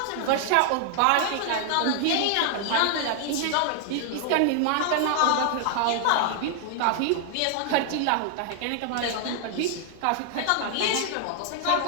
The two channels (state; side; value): different; both; correlation 0.00